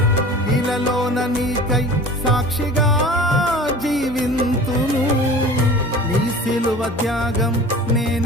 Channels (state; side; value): normal; both; correlation 0.40